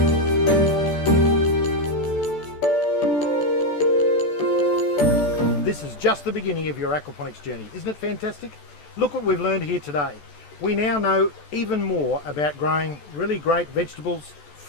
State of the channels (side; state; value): right; late; 14 ms